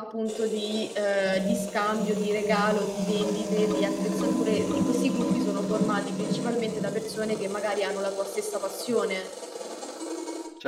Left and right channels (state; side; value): identical; both; correlation 1.00